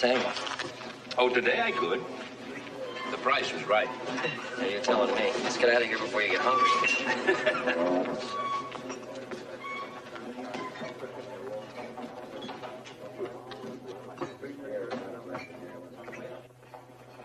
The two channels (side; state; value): both; identical; correlation 1.00